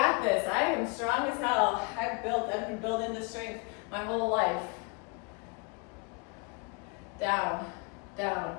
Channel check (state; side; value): quieter; right; 32.7 dB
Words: this. I am strong as hell. I've been building this strength my whole life. Down,